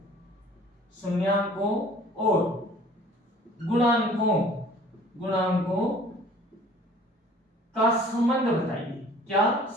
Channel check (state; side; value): normal; both; correlation 0.51